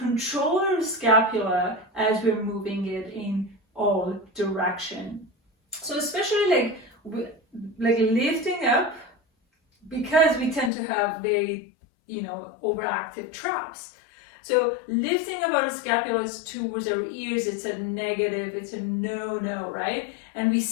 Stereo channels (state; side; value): drops out; right; at 10.7 s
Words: our scapula as we're moving it in all direction. So especially like lifting up, because we tend to have very, overactive traps. So lifting up our scapulas towards our ears, it's a negative, it's a no, right? And we